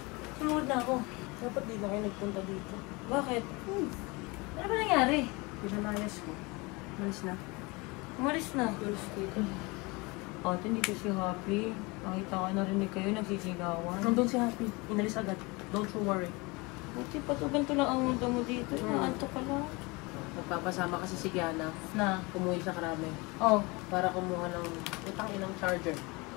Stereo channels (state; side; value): quieter; right; 25.8 dB